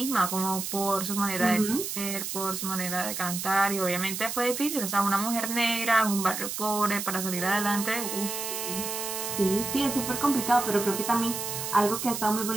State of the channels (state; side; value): noise; right; hiss, 5 dB below the sound